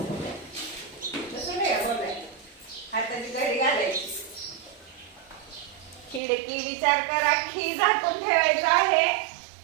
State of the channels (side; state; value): left; drops out; at 6.2 s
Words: हाताची घडी घालायची. खिडकी विचार करा. खी झाकून ठेवायचं आहे.